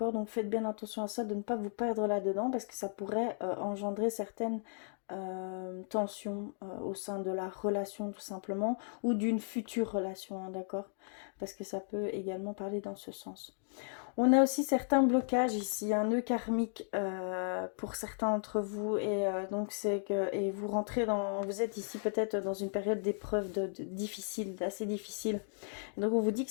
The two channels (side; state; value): right; silent; digital silence